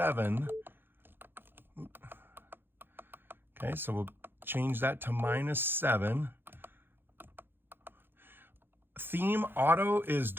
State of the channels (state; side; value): late; left; 0.10 ms